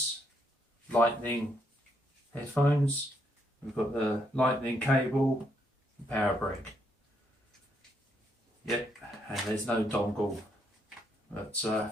lightning headphones. We've got the lightning cable, and power brick. Yep, and there's no dongle. But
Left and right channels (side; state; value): both; normal; correlation 0.75